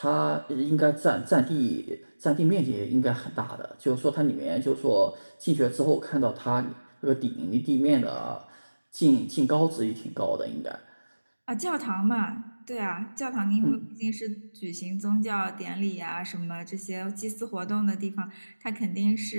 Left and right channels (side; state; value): both; inverted; correlation -1.00